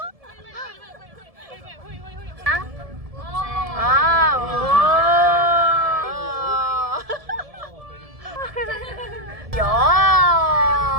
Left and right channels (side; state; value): left; late; 1.7 ms